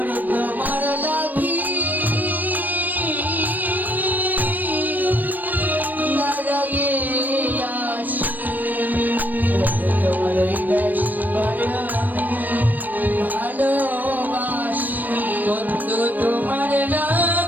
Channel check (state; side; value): late; left; 0.087 ms